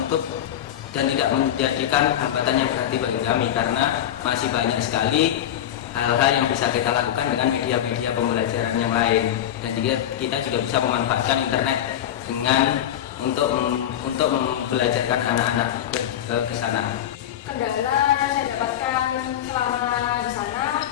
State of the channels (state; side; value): quieter; right; 11.0 dB